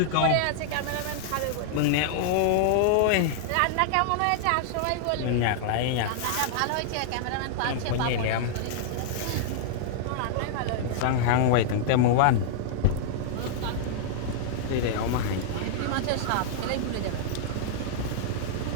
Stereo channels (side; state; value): both; different; correlation -0.01